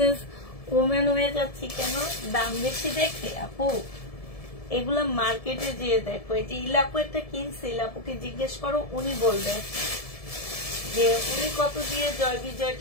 ওমেন হয়ে যাচ্ছি কেন? দাম বেশি দেখে আপু। এগুলা মার্কেটে যেয়ে দেখো, এই যে ইলাপু একটা কিনছে, ইলাপুকে জিজ্ঞেস করো, উনি বলবে যে উনি কত দিয়ে জয়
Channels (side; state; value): right; late; 1.7 ms